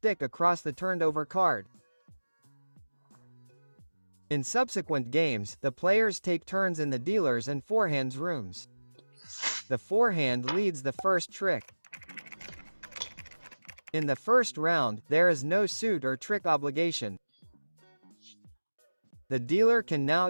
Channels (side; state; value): both; inverted; correlation -1.00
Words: across the turned over card. In subsequent games, the players take turns in the dealer's and forehand's rooms. The forehand leads the first trick. In the first round, there is no suit or trick obligation. The dealer can now